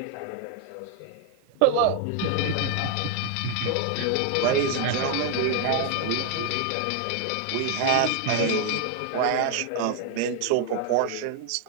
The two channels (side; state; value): both; different; correlation 0.01